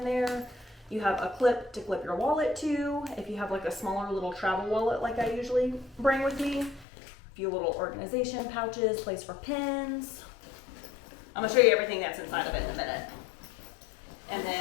there. You have a clip to clip your wallet to, if you have like a smaller little travel wallet like I usually bring with me. A few little organization pouches, place for pens. I'm gonna show you everything that's inside of it in a minute. And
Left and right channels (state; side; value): drops out; right; at 6.9 s